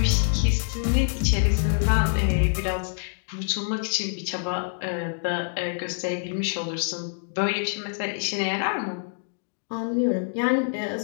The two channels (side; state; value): right; silent; digital silence